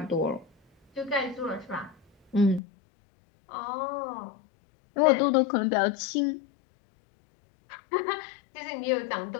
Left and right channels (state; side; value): drops out; right; at 2.6 s